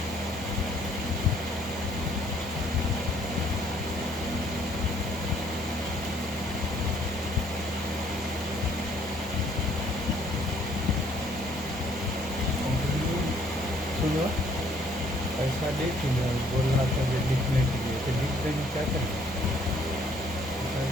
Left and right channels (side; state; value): both; normal; correlation 0.63